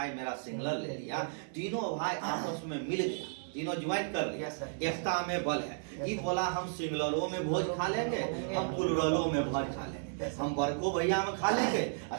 मेरा सिंगलर ले लिया, तीनों भाई आपस में मिल गया, तीनों ज्वाइन कर लिया, एकता में बल है। ये बोला हम सिंगलरों में भोज खा लेंगे, हम पुलरलों में भोज खा लेंगे, हम बड़को भैया में खा लेंगे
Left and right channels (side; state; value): left; silent; digital silence